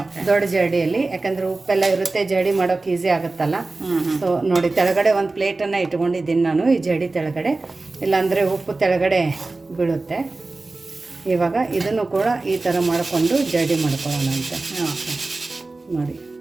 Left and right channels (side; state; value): left; quieter; 3.4 dB